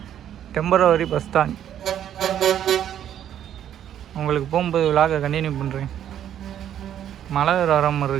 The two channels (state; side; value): quieter; left; 10.4 dB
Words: டெம்பரவரி பஸ் ஸ்டாண்ட். உங்களுக்கு போகும்போது விழாக கண்டினியூ பண்ணுறேன். மழை வர மாதிரி